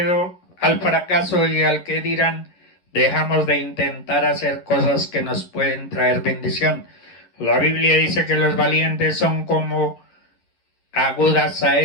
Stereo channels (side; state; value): right; late; 11 ms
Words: al fracaso y al que dirán, dejamos de intentar hacer cosas que nos pueden traer bendición. La Biblia dice que los valientes son como agudas